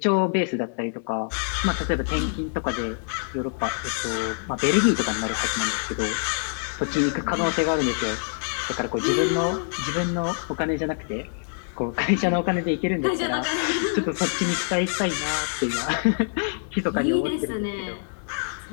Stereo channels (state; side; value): silent; right; 58 dB below the other